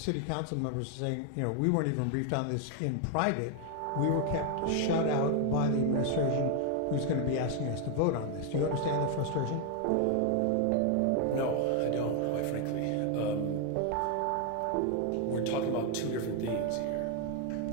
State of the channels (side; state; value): both; different; correlation 0.01